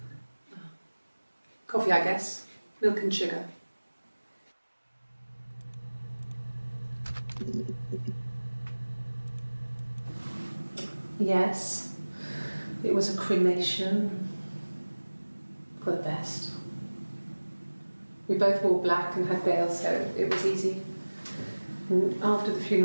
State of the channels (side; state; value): both; inverted; correlation -1.00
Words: Coffee, I guess. Milk and sugar. Yes, it was a cremation for the best. We both wore black and had veils, so it was easy. And after the